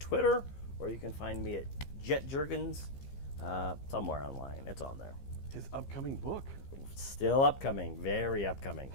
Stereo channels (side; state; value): right; late; 15 ms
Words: or you can find me at Jet Jurgens somewhere online. It's on there. His upcoming book. Still upcoming. Very upcoming.